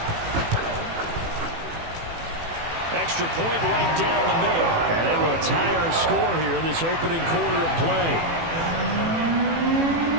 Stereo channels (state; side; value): late; left; 18 ms